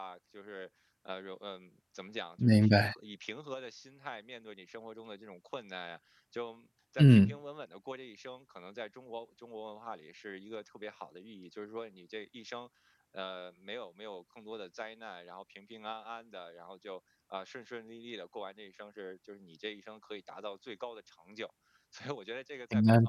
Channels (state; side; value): identical; both; correlation 1.00